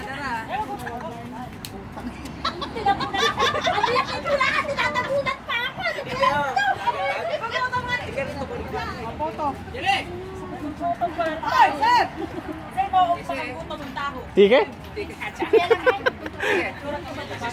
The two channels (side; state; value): both; identical; correlation 1.00